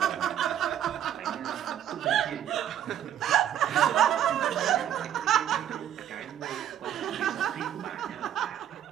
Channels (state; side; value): quieter; left; 10.6 dB